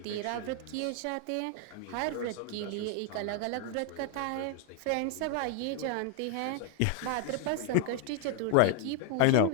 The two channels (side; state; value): both; different; correlation 0.00